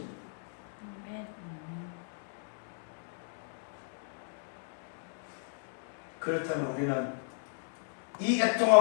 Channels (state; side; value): silent; right; digital silence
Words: 그렇다면 우리는 이